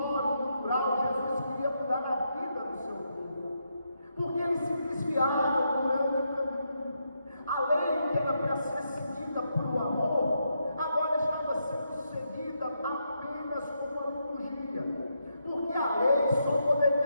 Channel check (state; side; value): inverted; both; correlation -0.81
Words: cultural, Jesus queria mudar a vida do seu povo, porque eles se desviaram durante o caminho. A lei que era para ser seguida por o amor, agora estava sendo seguida apenas com a liturgia, porque a lei só